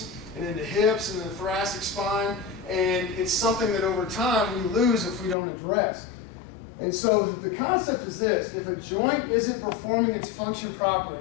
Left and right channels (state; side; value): drops out; right; at 5.4 s